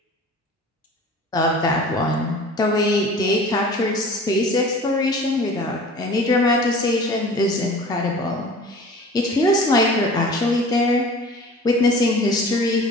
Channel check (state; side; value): normal; both; correlation 0.43